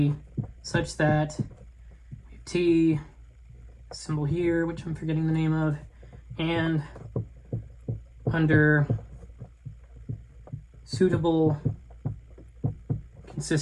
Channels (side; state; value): both; identical; correlation 1.00